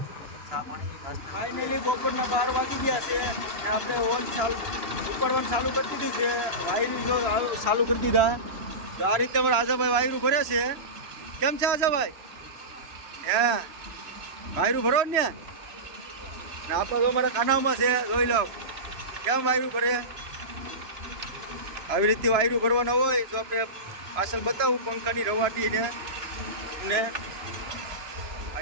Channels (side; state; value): left; late; 3.0 ms